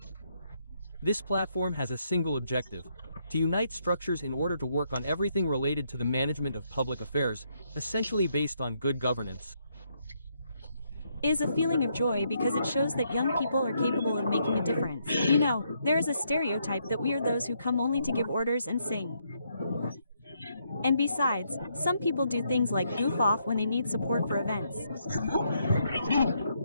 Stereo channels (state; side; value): inverted; both; correlation -0.75